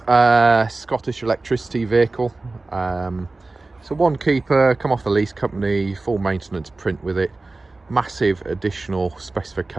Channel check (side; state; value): left; quieter; 3.3 dB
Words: Scottish electricity vehicle. So one keeper, come off the lease company, full maintenance print with it. Massive additional